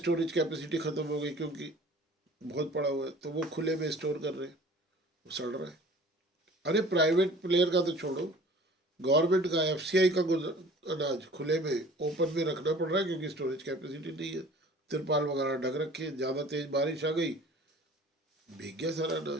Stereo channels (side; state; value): both; normal; correlation 0.47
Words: कैपेसिटी खत्म हो गई क्योंकि बहुत पड़ा हुआ है, तो वो खुले में स्टोर कर रहे हैं, वो सड़ रहा है। अरे प्राइवेट प्लेयर का तो छोड़ो, गवर्नमेंट का एफसीआई का अनाज खुले में ओपन में रखना पड़ रहा है क्योंकि स्टोरेज कैपेसिटी नहीं है, तिरपाल वगैरह ढक रखे हैं, ज़्यादा तेज बारिश आ गई, भीग गया सारा